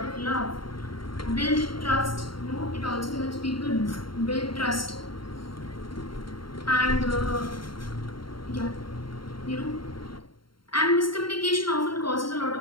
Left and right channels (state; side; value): late; right; 0.73 ms